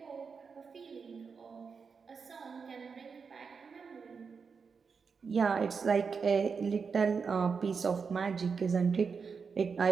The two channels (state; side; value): quieter; left; 5.5 dB